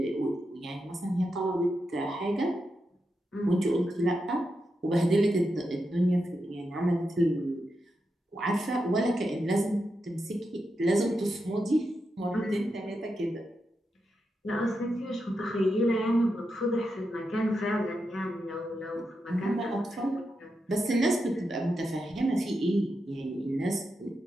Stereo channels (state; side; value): normal; both; correlation 0.86